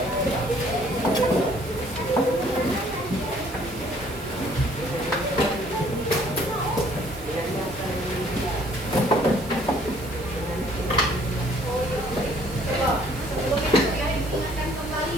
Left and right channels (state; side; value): noise; right; hiss, 18 dB below the sound